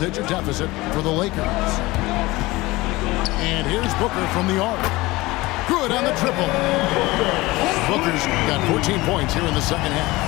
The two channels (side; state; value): right; quieter; 20.5 dB